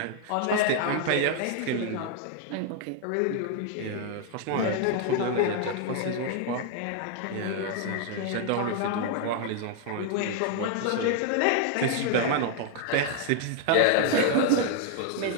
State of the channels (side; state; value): both; different; correlation 0.00